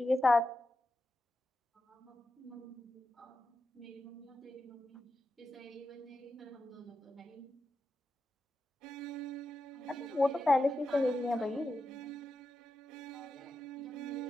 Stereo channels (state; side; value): normal; both; correlation 0.89